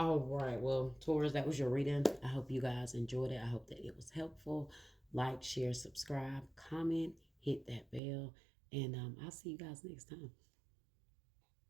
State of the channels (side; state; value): left; drops out; at 8.0 s